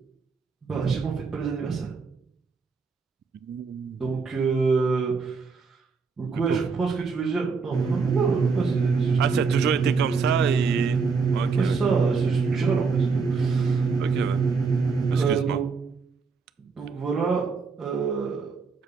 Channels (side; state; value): left; quieter; 4.9 dB